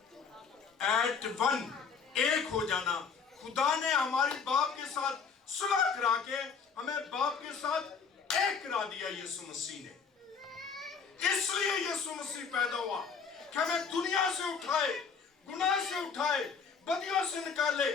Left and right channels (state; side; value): quieter; right; 5.8 dB